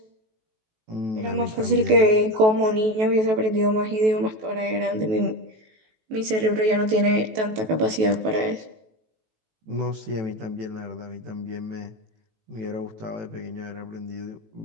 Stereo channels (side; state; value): left; late; 18 ms